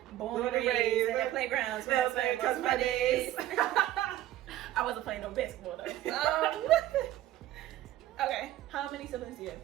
Born and raised at the playgrounds, where I spent most of my days. I wasn't playing no basketball though. Okay, how many siblings do you have?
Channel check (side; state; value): left; quieter; 14.0 dB